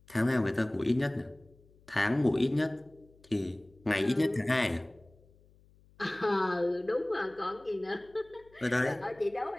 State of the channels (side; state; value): left; noise; hum, 29 dB below the sound